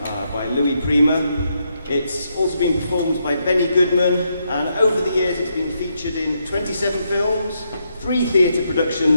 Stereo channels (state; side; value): inverted; both; correlation -0.79